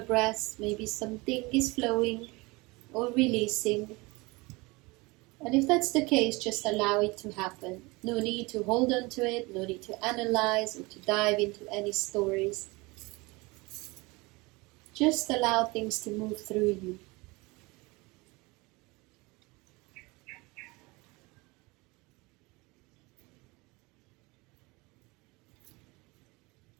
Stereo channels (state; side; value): quieter; left; 24.4 dB